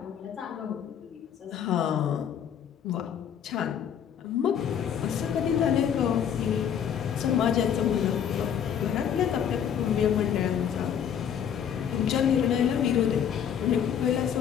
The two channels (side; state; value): right; quieter; 8.7 dB